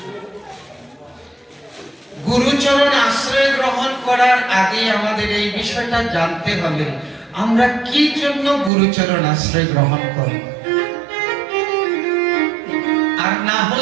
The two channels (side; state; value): left; drops out; at 8.7 s